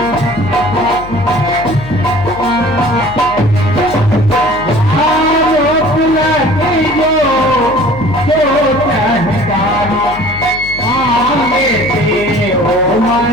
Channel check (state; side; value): noise; left; hum, 14 dB below the sound